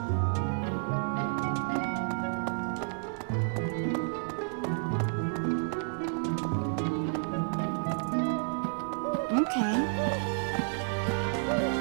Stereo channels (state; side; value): silent; left; 57 dB below the other